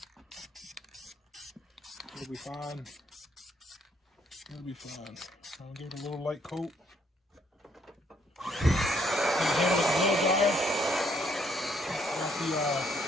It'll be fine. It'll be fine. I'll give it a little light coat.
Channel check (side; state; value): both; normal; correlation 0.69